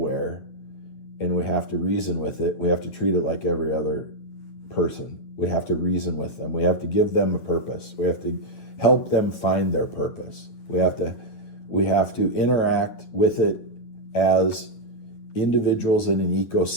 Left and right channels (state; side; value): late; right; 9.4 ms